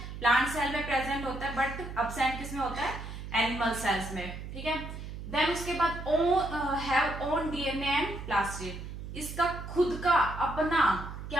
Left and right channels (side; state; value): right; noise; hum, 9 dB below the sound